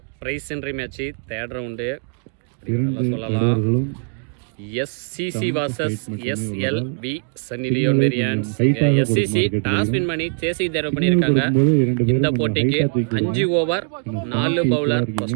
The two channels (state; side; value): quieter; left; 36.1 dB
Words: prize entry match 3rd round சொல்லலாம். SCC vs SLV Sunny Leone variance. SCC toss win பண்ணி சேசிங் தேர்வு பண்ணியிருக்காங்க. இந்த போட்டிக்கு 5 over 4 bowler,